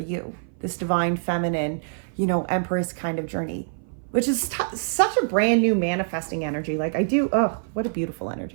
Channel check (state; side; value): silent; left; 57 dB below the other